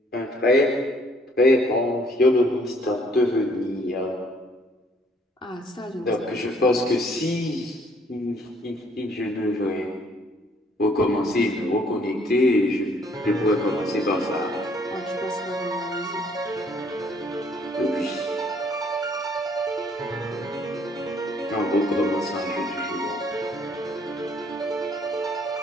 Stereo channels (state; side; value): normal; both; correlation 0.63